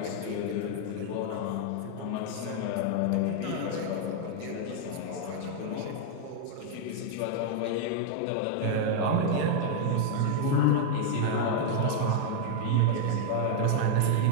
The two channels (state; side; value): different; both; correlation 0.00